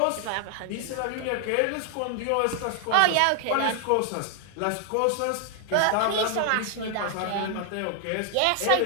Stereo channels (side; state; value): both; different; correlation 0.00